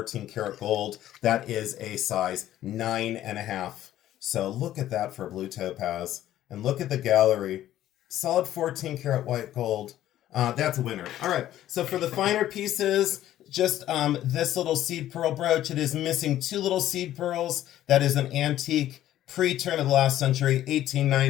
karat gold. That is a size 9.5. So look at that for blue topaz. And look at the gallery. Solid 14 karat white gold. That's a winner. All right. So for the finer pieces, just this little seed pearl brooch. It is missing 2 little seed pearls. That is an antique pre-turn of the last century,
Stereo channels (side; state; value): right; quieter; 12.9 dB